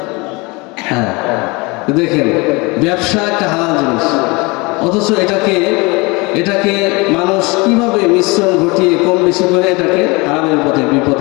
হ্যাঁ, দেখেন, ব্যবসা একটা হালাল জিনিস, অথচ এটাকে মানুষ কিভাবে মিশ্রণ ঘটিয়ে কম বেশি করে এটাকে হারামের পথে,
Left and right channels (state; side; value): quieter; right; 26.1 dB